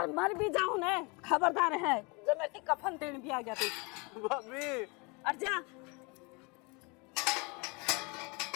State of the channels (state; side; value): quieter; right; 29.5 dB